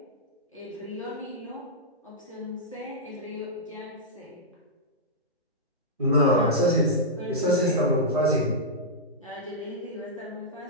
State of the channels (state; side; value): normal; both; correlation -0.10